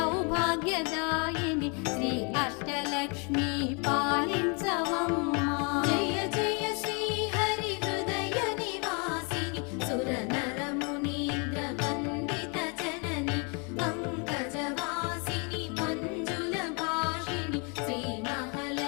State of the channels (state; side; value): quieter; right; 34.4 dB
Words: శ్రీ అష్టలక్ష్మి పాలించవమ్మా. జయ జయ శ్రీ హరి హృదయ నివాసిని సుర నర మునీంద్ర వందిత జనని పంకజవాసిని మంజుల భాషిని శ్రీ